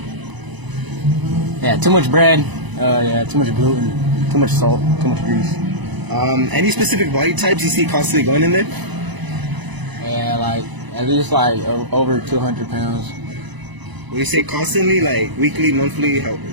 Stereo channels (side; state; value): left; late; 1.0 ms